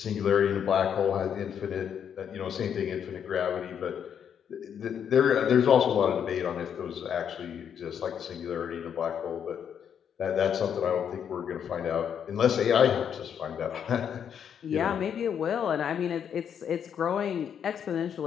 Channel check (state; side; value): quieter; right; 8.2 dB